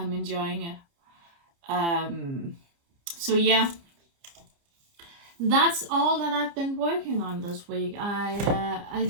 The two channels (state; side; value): late; left; 29 ms